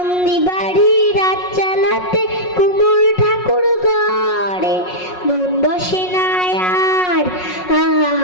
বাড়ি রাত চালাতে কুমোর ঠাকুর ঘরে। মন বসে না আর,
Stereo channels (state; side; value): late; right; 5.5 ms